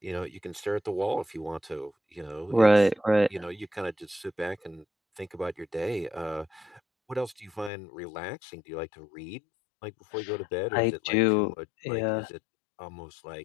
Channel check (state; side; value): drops out; right; at 7.7 s